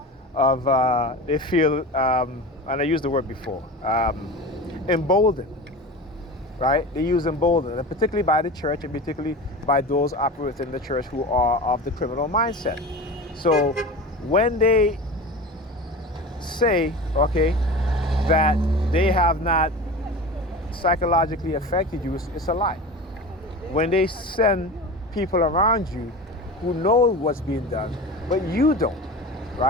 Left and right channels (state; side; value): normal; both; correlation 0.31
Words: they feel, and I used the word before, emboldened, right? They use emboldened, and particularly by the church, and particularly by those operating in the church who are of the criminal mindset. So when they say, okay, that they have not psychologically affected you, it's a lie. When they send people around you who know what's being done, but you don't,